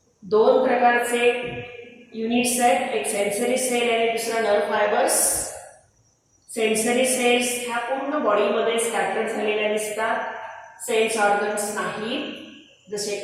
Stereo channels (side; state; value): both; identical; correlation 1.00